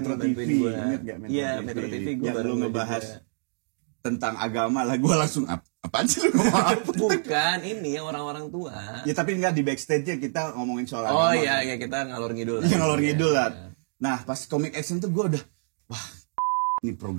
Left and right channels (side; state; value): left; silent; digital silence